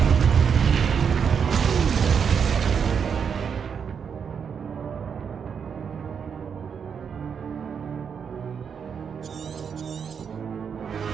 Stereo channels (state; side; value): quieter; left; 6.9 dB